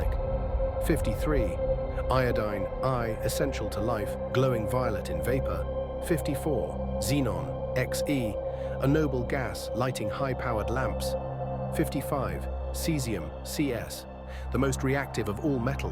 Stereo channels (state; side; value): identical; both; correlation 1.00